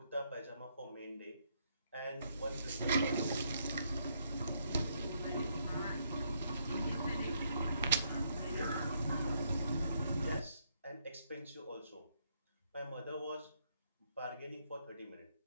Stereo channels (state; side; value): inverted; both; correlation -0.73